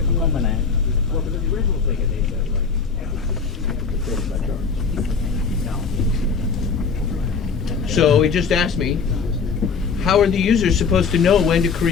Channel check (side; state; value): right; quieter; 5.4 dB